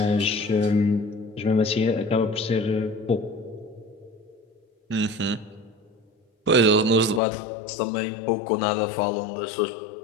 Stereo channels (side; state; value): right; drops out; at 7.2 s